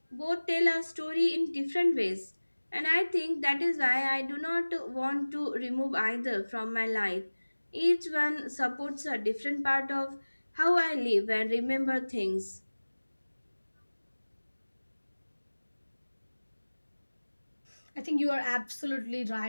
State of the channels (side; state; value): both; inverted; correlation -1.00